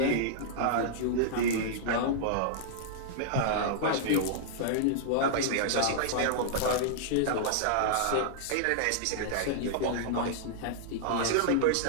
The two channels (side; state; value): both; different; correlation -0.01